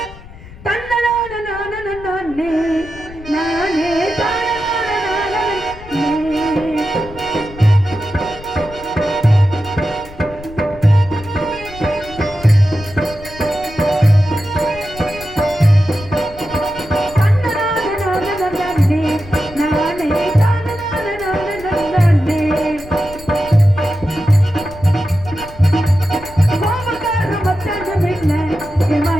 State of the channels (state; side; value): noise; left; rumble, 17 dB below the sound